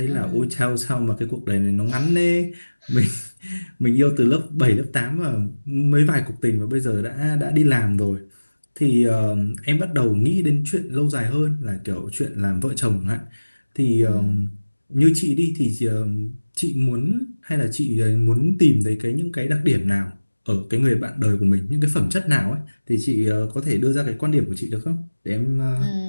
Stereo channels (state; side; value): inverted; both; correlation -1.00